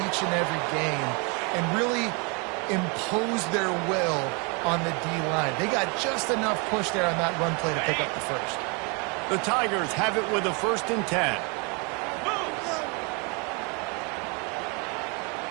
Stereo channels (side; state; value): left; quieter; 32.5 dB